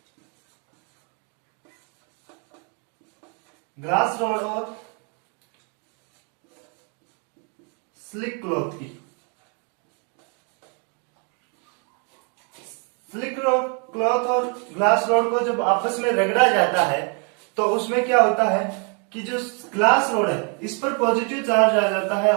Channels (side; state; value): left; quieter; 37.8 dB